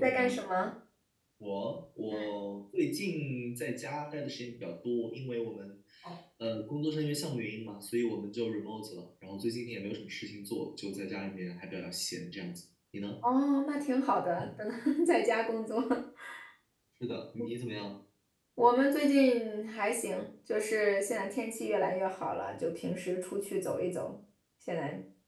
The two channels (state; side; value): identical; both; correlation 1.00